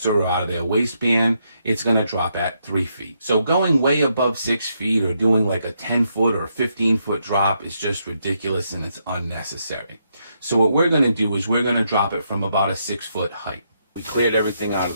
or out of their waistband, it's going to drop at 3 feet. So going way above 6 feet or doing like a 10-foot or 15-foot drop is just ridiculous, and it's unnecessary. So what we're going to do is we're going to drop it from about a 6-foot height. We cleared everything out of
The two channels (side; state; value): both; inverted; correlation -0.78